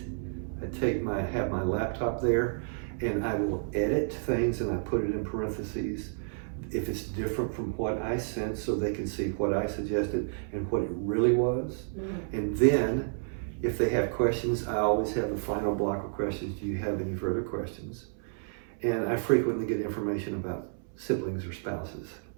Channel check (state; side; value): silent; left; 57 dB below the other